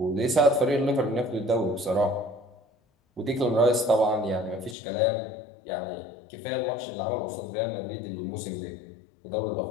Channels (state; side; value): drops out; right; at 4.8 s